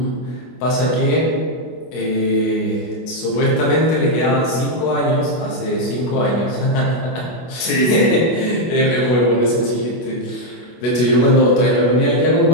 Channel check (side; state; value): right; late; 24 ms